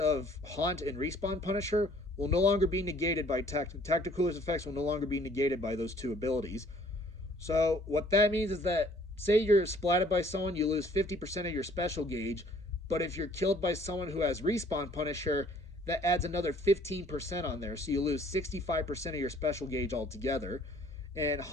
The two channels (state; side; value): normal; both; correlation 0.58